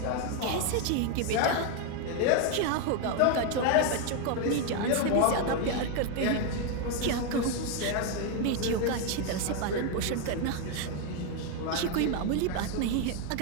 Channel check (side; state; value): both; different; correlation 0.01